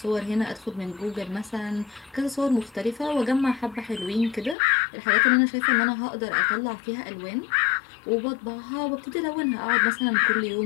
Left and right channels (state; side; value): drops out; right; at 4.5 s